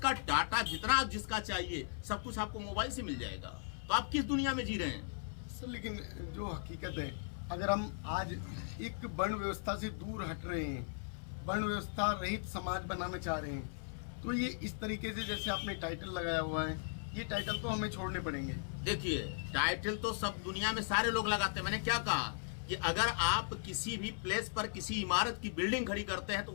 डाटा जितना आप जिसका चाहिए सब कुछ आपको मोबाइल से मिल जाएगा। तो आप किस दुनिया में जी रहे हैं सर? लेकिन जो हकीकत है, अगर हम आज एक वर्ण व्यवस्था से दूर हट रहे हैं, वर्ण व्यवस्था रहित समाज बनाना चाह रहे हैं, तो ये इस तरीके से जैसे आपने टाइटल लगाया हुआ है, ये टाइटल तो हमें छोड़ने पड़ेंगे। देखिए, टाइटल तो सब दुनिया में सारे लोग लगाते हैं। मैंने क्या कहा कि अगर आप किसी भी प्लेस पर किसी इमारत की बिल्डिंग खड़ी करते हैं तो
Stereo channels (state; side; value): silent; right; 53 dB below the other